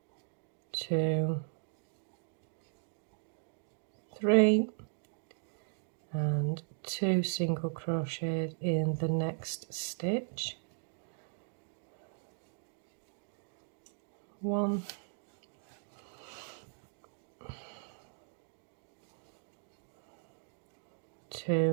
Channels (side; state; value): left; silent; digital silence